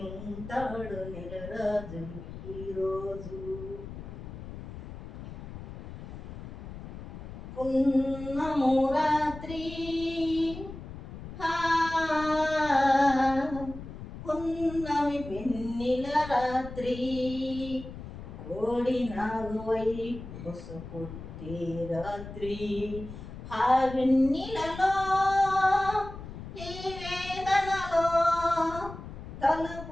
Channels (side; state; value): left; noise; rumble, 12 dB below the sound